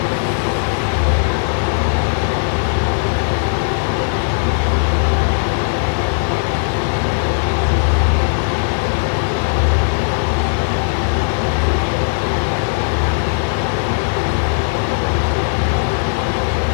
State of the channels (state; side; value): silent; right; digital silence